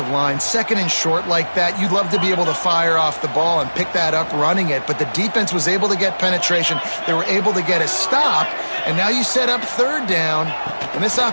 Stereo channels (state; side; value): inverted; both; correlation -1.00